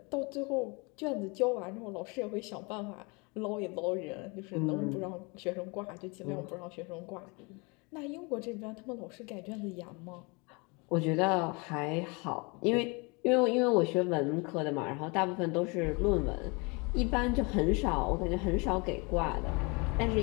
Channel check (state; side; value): quieter; right; 29.4 dB